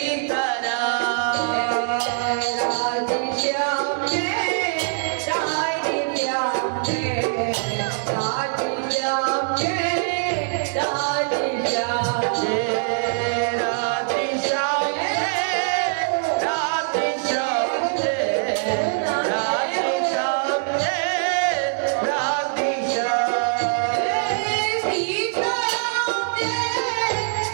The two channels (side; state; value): left; silent; digital silence